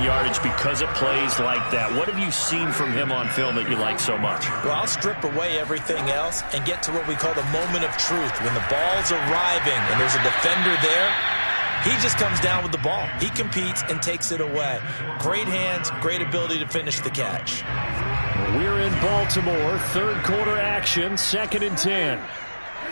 yardage because of plays like that. What have you seen from him on film that you like so much? Well, I'll strip away everything else and get to what we call the moment of truth. When the ball's arriving and there's a defender there, he just comes down with the ball. He competes and takes it away. Great hands, great ability to finish the catch. We're in Baltimore. 3rd quarter action, 2nd and 10.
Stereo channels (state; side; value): inverted; both; correlation -1.00